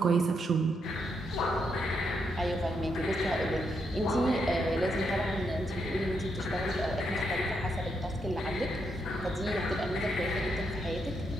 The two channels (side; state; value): both; normal; correlation 0.79